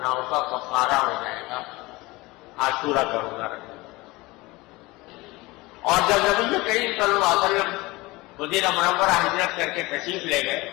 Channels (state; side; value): quieter; right; 21.8 dB